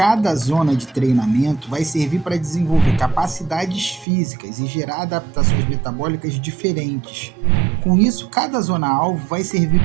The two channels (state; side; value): drops out; left; at 4.0 s